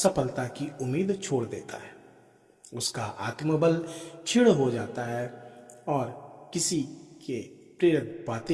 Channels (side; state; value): both; identical; correlation 1.00